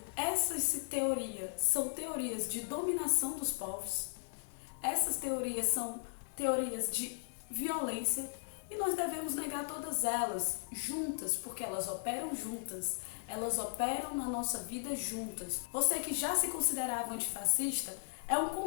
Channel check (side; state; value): right; silent; digital silence